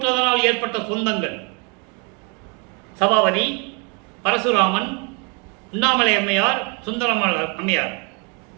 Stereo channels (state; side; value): quieter; left; 33.5 dB